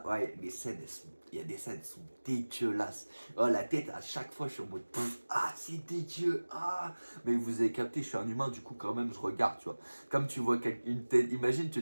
ouais, les scènes, il y a des scènes, elles sont dégueulasses. Oh, la tête, à chaque fois, je suis en mode, ah, c'est dégueu, ah. Mais vous avez capté, je suis un humain, du coup, quand même, je regarde, tu vois. Comme tu vois une tête, imagine, tu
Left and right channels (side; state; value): both; inverted; correlation -1.00